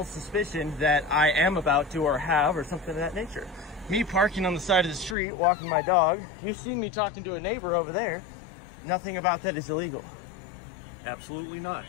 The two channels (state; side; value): drops out; right; at 5.2 s